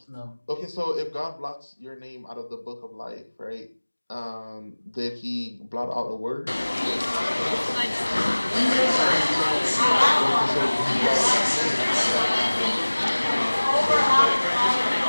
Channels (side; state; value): both; inverted; correlation -1.00